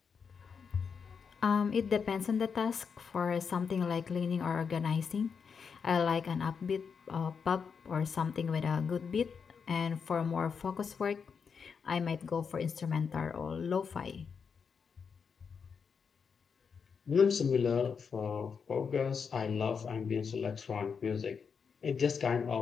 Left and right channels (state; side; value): quieter; right; 6.1 dB